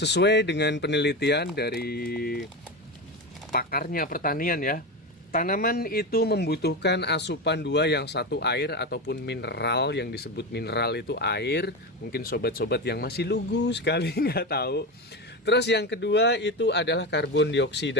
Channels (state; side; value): normal; both; correlation 0.19